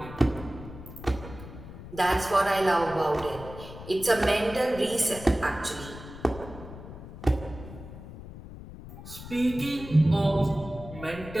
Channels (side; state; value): left; noise; rumble, 14 dB below the sound